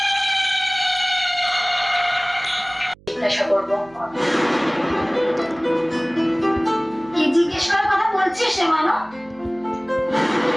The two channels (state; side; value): noise; right; hum, 26 dB below the sound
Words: জিজ্ঞাসা করবো। কি জিজ্ঞেস করার কথা বলছিস সে মানো?